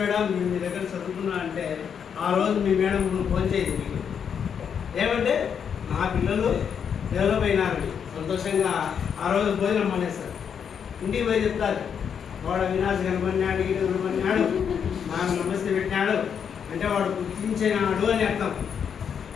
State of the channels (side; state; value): right; quieter; 7.5 dB